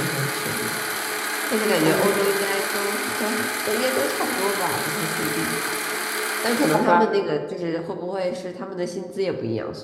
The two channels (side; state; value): both; identical; correlation 1.00